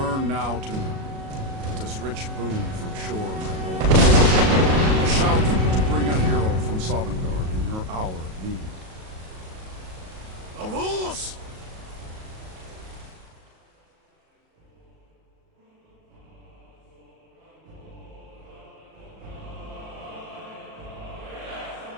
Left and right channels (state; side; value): late; left; 37 ms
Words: now to noon, with this rich boon from Shore, my lord. A shout to bring a hero from Sovngarde in your hour of need. Avos!